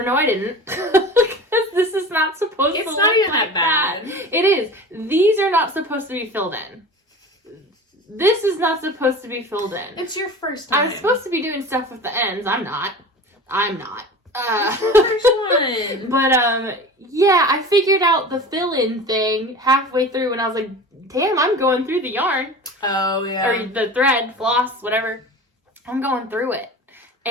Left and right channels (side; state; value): both; normal; correlation 0.36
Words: no, I didn't. Because this is not supposed to look not even like that bad. It is. These are not supposed to be filled in. This is not supposed to be filled in. It's your first time. I'm supposed to be doing stuff with the ends. I'm not. It's your first one. But yeah, I figured out the fill-in thing halfway through and I was like, damn, I'm going through the yarn. Oh, yeah. Or the thread, floss, whatever. I'm going through it.